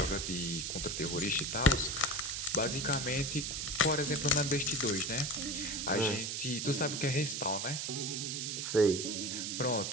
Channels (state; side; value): noise; right; hiss, 3 dB below the sound